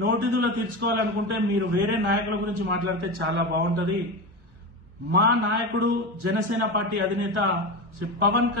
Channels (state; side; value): late; left; 1.3 ms